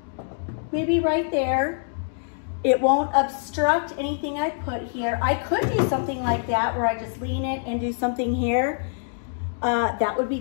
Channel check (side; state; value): right; silent; digital silence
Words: maybe right there. It won't obstruct anything I put here. I could do something like that where I just lean it and do something here. That would be